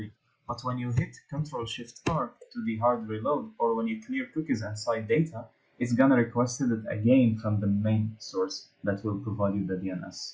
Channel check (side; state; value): both; identical; correlation 1.00